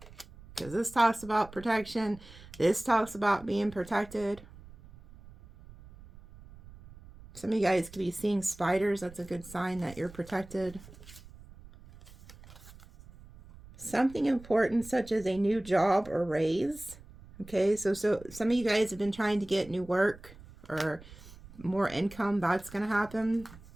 Because this talks about protection. This talks about being protected. Some of you guys could be seeing spiders. That's a good sign that you're protected. Something important such as a new job or raise. Okay, so some of you guys have been trying to get new work or more income. That's going to happen.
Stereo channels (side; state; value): right; noise; rumble, 20 dB below the sound